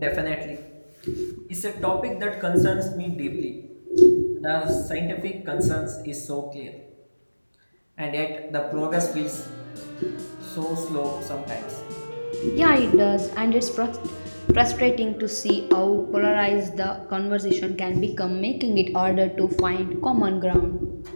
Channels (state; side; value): inverted; both; correlation -1.00